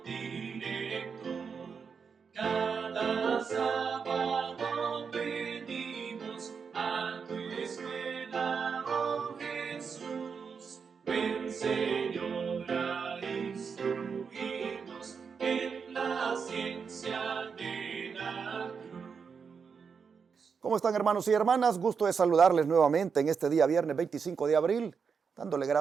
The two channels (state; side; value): quieter; left; 6.0 dB